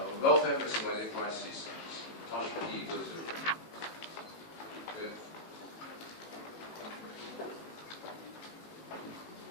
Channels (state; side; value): late; right; 18 ms